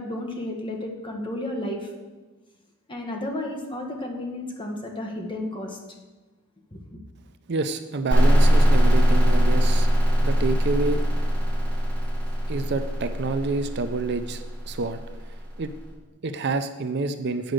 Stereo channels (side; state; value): both; normal; correlation 0.83